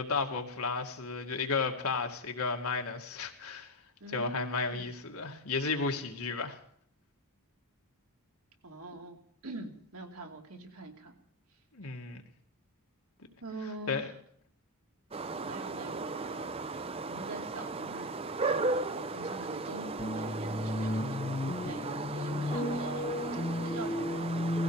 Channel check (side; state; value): both; normal; correlation 0.20